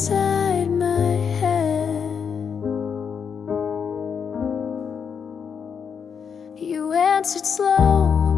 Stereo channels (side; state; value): right; quieter; 6.8 dB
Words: my head. You answered slow,